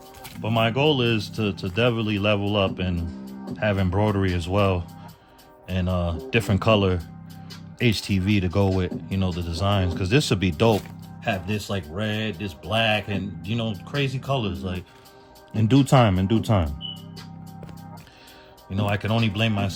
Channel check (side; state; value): both; identical; correlation 1.00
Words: But my goal is to definitely level up and have embroidery as well, and different color HTV to go with, you know, the designs, because this would be dope. Have this like red, this black, and you know, crazy colors. Like in due time. You know, I can only blame